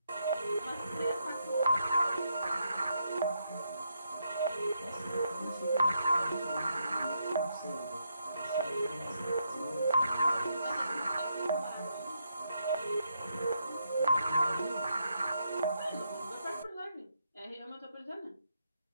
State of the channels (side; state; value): both; inverted; correlation -0.79